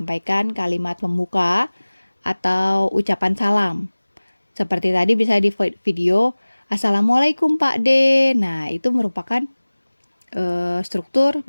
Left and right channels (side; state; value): both; inverted; correlation -1.00